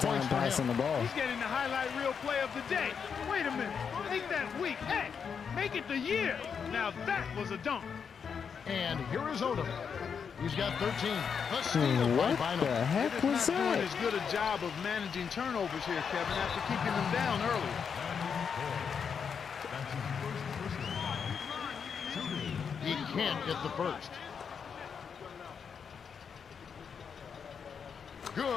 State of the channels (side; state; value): right; quieter; 6.6 dB